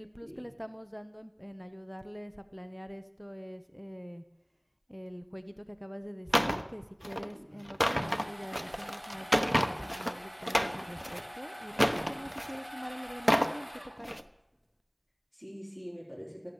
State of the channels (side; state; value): both; identical; correlation 1.00